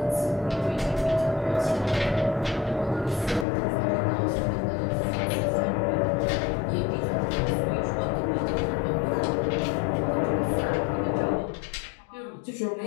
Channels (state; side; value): drops out; right; at 3.5 s